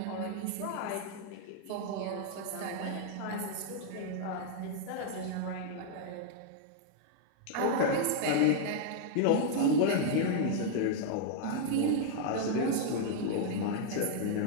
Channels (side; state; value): both; different; correlation 0.00